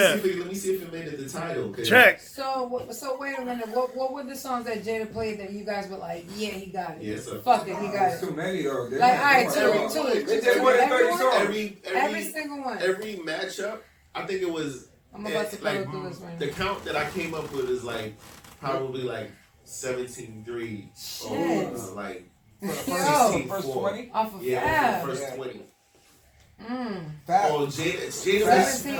Let me see if it made it the title. 'cause check. So wait a minute. What were the songs that Jada played that you guys were like, yeah, he got it. Yeah, so Fuck it, he got There's it. too many though. They Like, went- all right, they went- two. They just went 30 Everyone? songs. Every single one. every matchup, I think it was. I'm about to like, go through this right the now. count that I came up with is like probably like 17-3 or Shit. like Yo, First 16-4. 20. off of Yeah, Fab. first Yeah. 20. Fab. Oh, Jada Fab was did-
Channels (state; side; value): identical; both; correlation 1.00